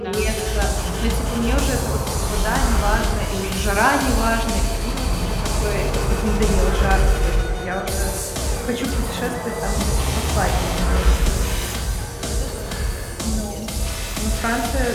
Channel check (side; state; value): both; identical; correlation 1.00